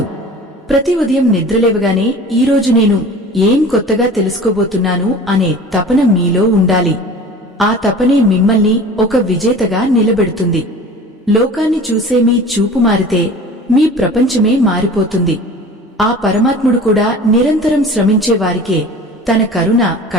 ప్రతి ఉదయం నిద్రలేవగానే ఈరోజు నేను ఏం కొత్తగా తెలుసుకోబోతున్నాను అనే తపన మీలో ఉండాలి. ఆ తపనే మిమ్మల్ని ఒక విజేతగా నిలబెడుతుంది. లోకాన్ని చూసే మీ చూపు మారితే మీ ప్రపంచమే మారిపోతుంది. ఆ పరమాత్ముడు కూడా నిరంతరం శ్రమించే వారికే తన కరుణ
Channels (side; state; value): both; normal; correlation 0.41